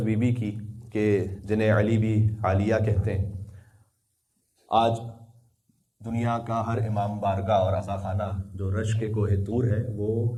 بی بی کی کہ جنہیں علی بھی عالیہ کہتے ہیں. آج دنیا کا ہر امام بارگاہ اور عزا خانہ جو رش کے کوہ طور ہے وہ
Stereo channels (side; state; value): both; identical; correlation 1.00